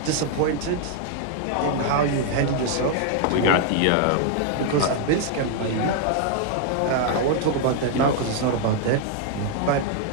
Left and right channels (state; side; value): different; both; correlation 0.00